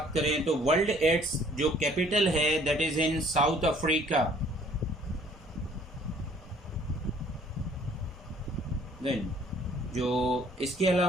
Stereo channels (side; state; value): both; normal; correlation 0.58